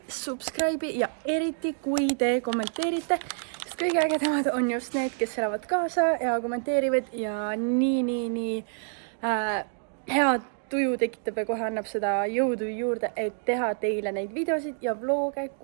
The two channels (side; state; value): left; silent; digital silence